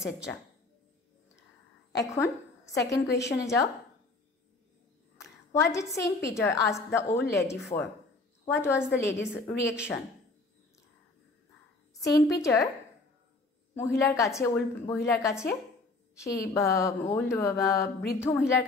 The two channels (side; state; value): right; quieter; 3.4 dB